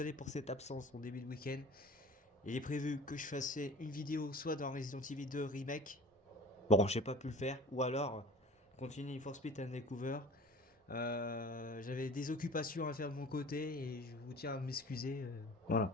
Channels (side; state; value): both; normal; correlation 0.42